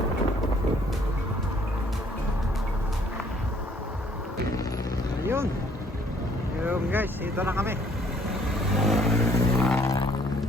Ayun. Ayun guys, dito na kami.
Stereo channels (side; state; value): both; normal; correlation 0.62